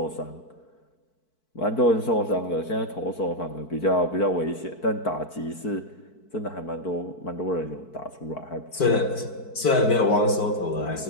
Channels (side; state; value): right; late; 4.6 ms